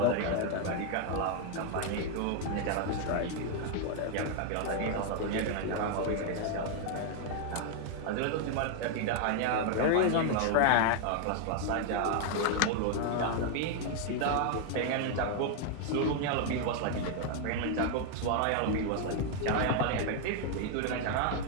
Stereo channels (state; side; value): different; both; correlation 0.00